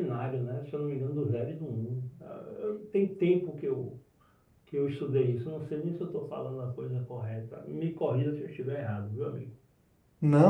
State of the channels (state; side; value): identical; both; correlation 1.00